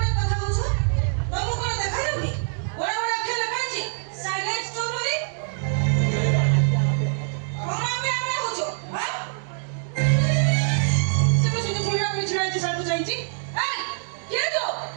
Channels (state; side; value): silent; left; 62 dB below the other